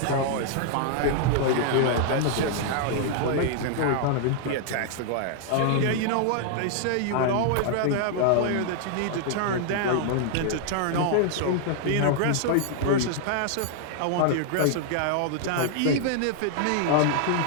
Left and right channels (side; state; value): both; different; correlation -0.01